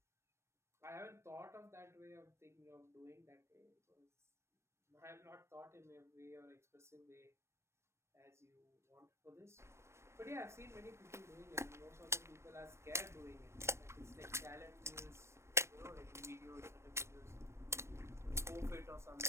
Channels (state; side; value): late; left; 0.13 ms